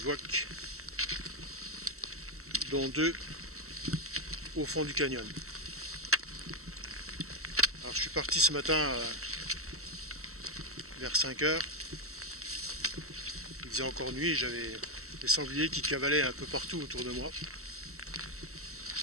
dont 2 au fond du canyon. Alors je suis parti ce matin vers 5 heures. Il faisait encore nuit, j'avais des sangliers qui cavalaient un peu partout autour de moi.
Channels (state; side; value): late; left; 0.63 ms